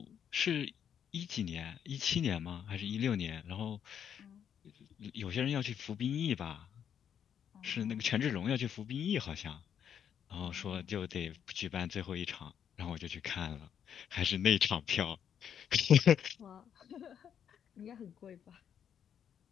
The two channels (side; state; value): right; quieter; 8.6 dB